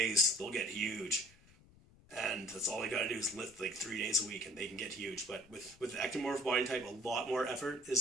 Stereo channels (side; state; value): left; noise; rumble, 26 dB below the sound